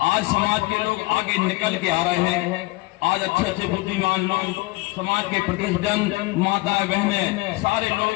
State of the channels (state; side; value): quieter; right; 22.7 dB